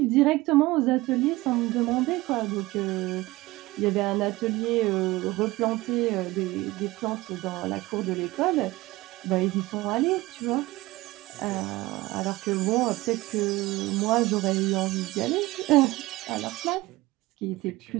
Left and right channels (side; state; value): left; quieter; 19.8 dB